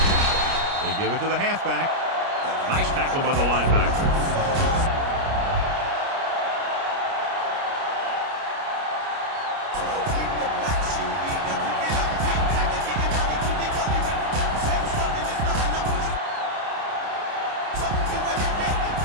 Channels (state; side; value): late; left; 29 ms